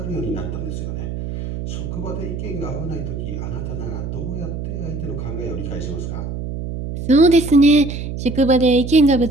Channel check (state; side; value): noise; right; hum, 6 dB below the sound